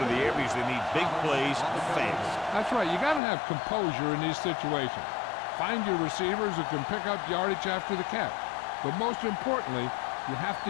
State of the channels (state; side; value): drops out; right; at 3.2 s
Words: the air because they need big plays fast. That's right. You got to have composure in these situations. Find your receivers who can pick up yardage after the catch. But most importantly, you have